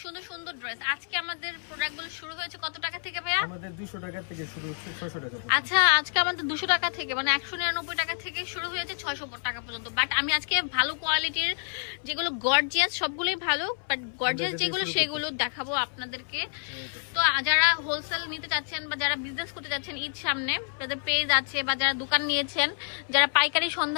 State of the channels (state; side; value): silent; right; 59 dB below the other